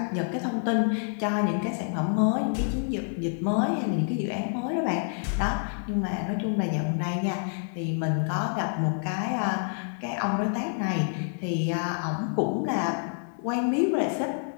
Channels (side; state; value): right; silent; 60 dB below the other